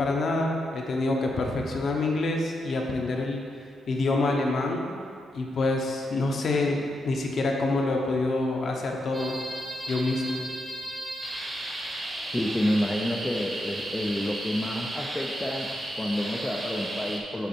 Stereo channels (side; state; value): both; normal; correlation 0.84